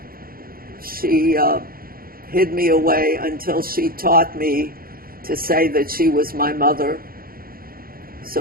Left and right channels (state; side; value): late; left; 0.42 ms